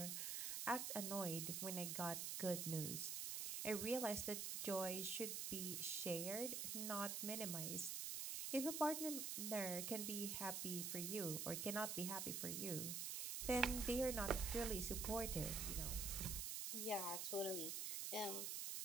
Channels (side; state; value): right; noise; hiss, 1 dB below the sound